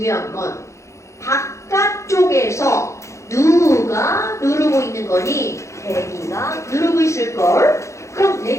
건 바깥쪽에서 누가 누르고 있는 거니? 대기가 누르고 있을걸. 그럼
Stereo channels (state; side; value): late; right; 0.14 ms